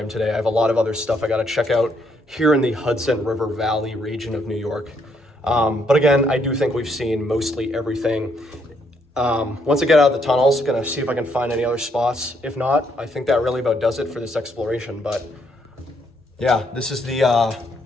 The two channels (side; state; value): both; normal; correlation 0.73